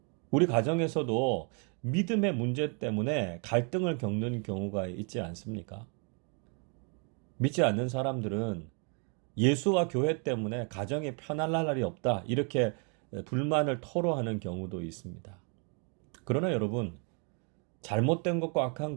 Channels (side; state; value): left; quieter; 37.7 dB